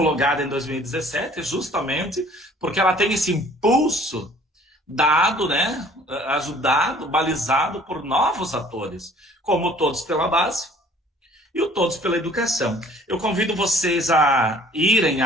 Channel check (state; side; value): normal; both; correlation 0.54